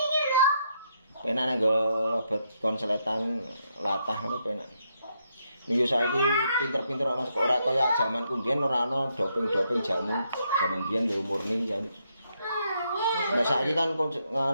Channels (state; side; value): inverted; both; correlation -0.77